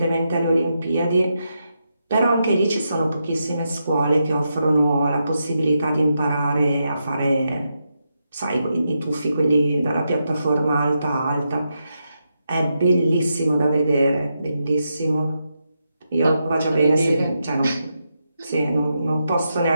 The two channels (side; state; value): both; inverted; correlation -0.85